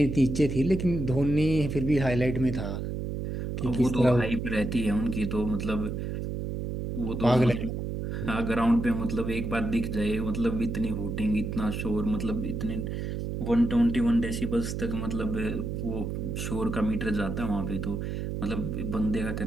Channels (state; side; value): noise; right; hum, 4 dB below the sound